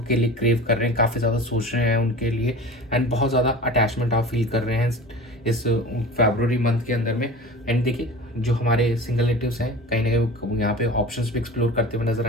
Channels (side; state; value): both; normal; correlation 0.35